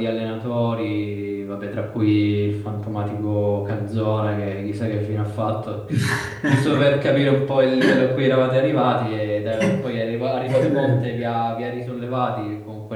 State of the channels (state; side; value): identical; both; correlation 1.00